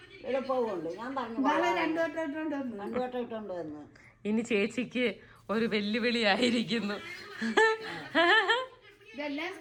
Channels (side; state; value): both; identical; correlation 1.00